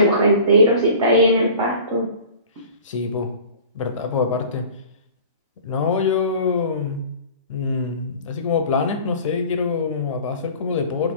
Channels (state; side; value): inverted; both; correlation -0.42